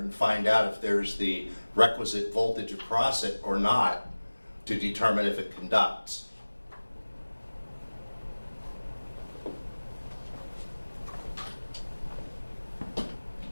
find out if there's the requisite voltage across it or not to determine if it conducts.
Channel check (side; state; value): both; inverted; correlation -1.00